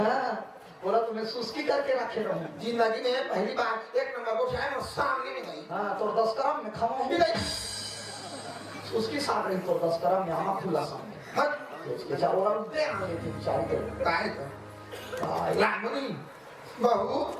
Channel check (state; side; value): identical; both; correlation 1.00